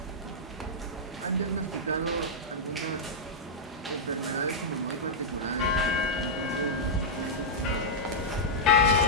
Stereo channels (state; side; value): normal; both; correlation -0.08